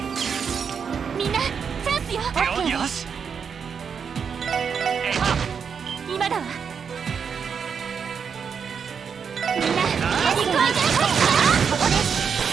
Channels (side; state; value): left; quieter; 6.6 dB